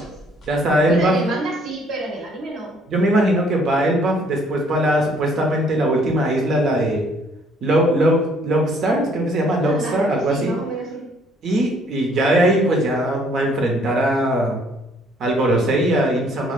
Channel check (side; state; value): both; normal; correlation 0.63